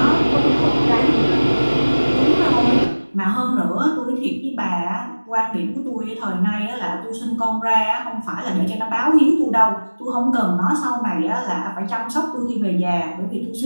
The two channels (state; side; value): inverted; both; correlation -1.00